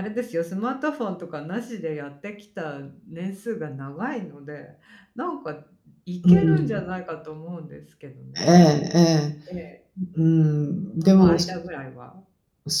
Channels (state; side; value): identical; both; correlation 1.00